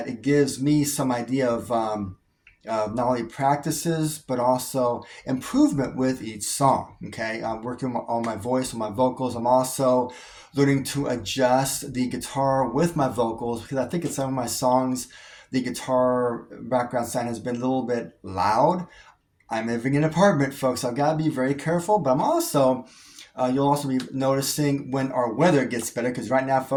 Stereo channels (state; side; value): identical; both; correlation 1.00